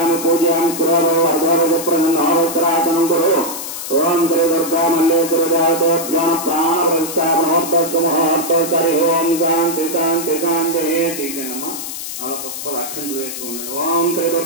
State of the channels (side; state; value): left; noise; hiss, 7 dB below the sound